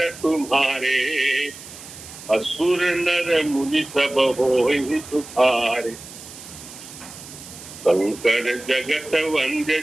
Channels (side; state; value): right; noise; hiss, 15 dB below the sound